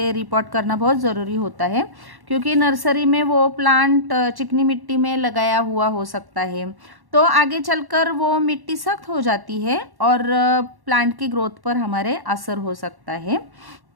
रिपोर्ट करना बहुत ज़रूरी होता है, क्योंकि नर्सरी में वो प्लांट चिकनी मिट्टी में लगाया हुआ हो सकता है, तो आगे चलकर वो मिट्टी सख्त हो जाती है और प्लांट की ग्रोथ पर हमारे असर हो सकता है।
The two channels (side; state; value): left; late; 1.1 ms